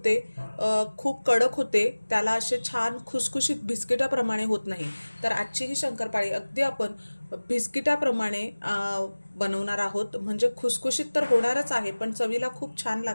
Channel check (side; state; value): both; inverted; correlation -1.00